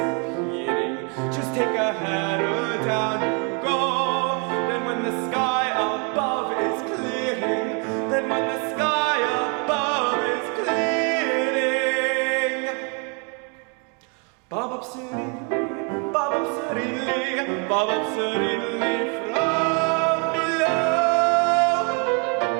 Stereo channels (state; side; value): quieter; left; 36.2 dB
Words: Just take a header, down you go. Then when the sky above is clearing, then when the sky above is clearing, bob up serenely, bob up serenely, bob up serenely from below.